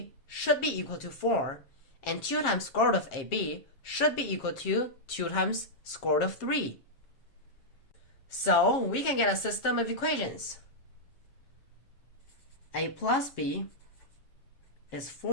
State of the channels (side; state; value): right; late; 7.4 ms